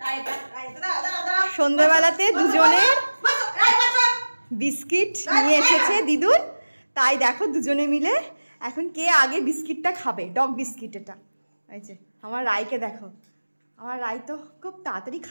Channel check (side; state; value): both; inverted; correlation -1.00